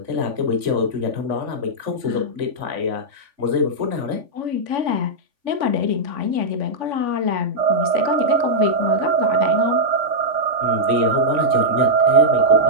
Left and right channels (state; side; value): late; left; 3.5 ms